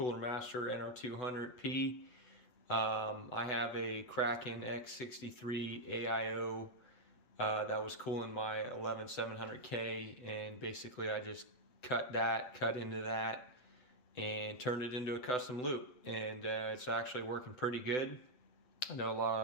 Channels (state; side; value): late; right; 8.0 ms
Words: Master NR200p. I have a Kraken x63 AIO that was cooling my 11700K, and basically I just cut into that and turned it into a custom loop, and it's actually working pretty good. I know